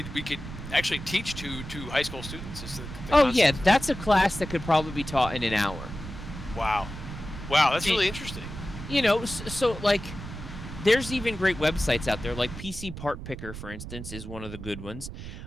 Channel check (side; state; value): right; noise; rumble, 10 dB below the sound